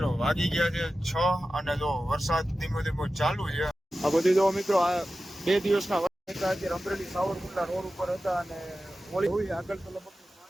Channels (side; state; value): both; normal; correlation 0.94